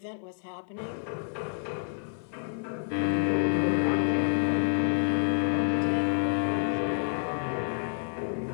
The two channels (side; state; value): right; silent; 59 dB below the other